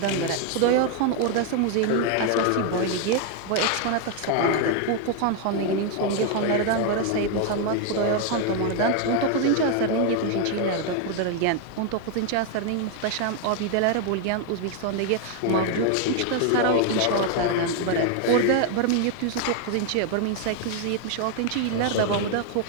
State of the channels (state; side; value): different; both; correlation 0.00